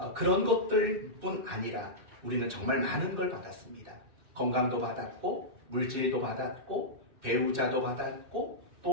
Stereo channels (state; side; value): late; left; 2.6 ms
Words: 그런 것들뿐 아니라 우리는 정말 많은 걸 받았습니다. 건강도 받았고 물질도 받았고 배우자도 받았고